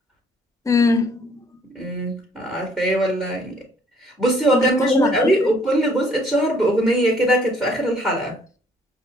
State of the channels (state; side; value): normal; both; correlation 0.62